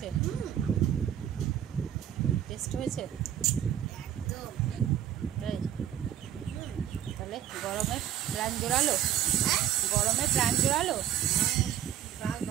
টেস্ট হয়েছে একদম। তাহলে গরমে প্রাণ জোড়ালো।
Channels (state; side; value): quieter; left; 10.6 dB